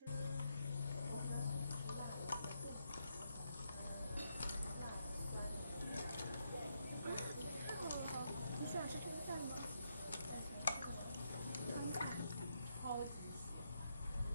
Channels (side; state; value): both; inverted; correlation -0.80